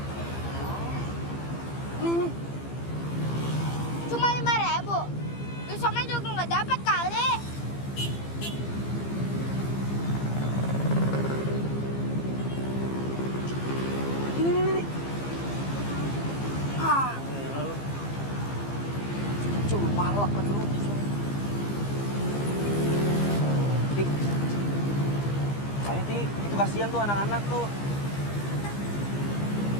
Nih. Cuma 5.000. Besoknya juga nggak dapat kali. Ini. Ah. Coba palak lagi lu. Ti. Ayo, Ti. Itu kasihan tuh anak-anak tuh.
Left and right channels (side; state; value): right; late; 15 ms